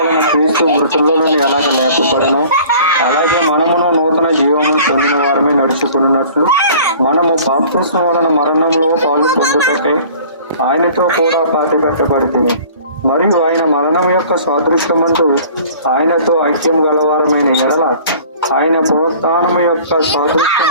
క్రీస్తు మృతుల్లో నుండి ఎలాగ లేపబడను, అలాగే మనమును నూతన జీవమును పొందిన వారమే నడుచుకున్నట్లు మనము బాప్తిస్మం వలన మరణంలో పాలు పొందుటకై ఆయనతో కూడా పాతిపెట్టబడితిమి. మరియు ఆయన మరణం యొక్క సాదృశ్యమందు ఆయనతో ఐక్యం గలవారమైన ఎడల ఆయన పునరుత్థానం యొక్క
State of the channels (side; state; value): both; inverted; correlation -0.48